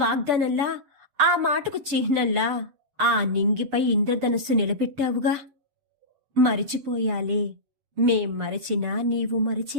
వాగ్దానంలా, ఆ మాటకు చిహ్నంలా ఆ నింగిపై ఇంద్రధనస్సు నిలబెట్టావుగా. మరిచిపోయాలే, మేం మరచినా నీవు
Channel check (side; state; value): left; late; 7.3 ms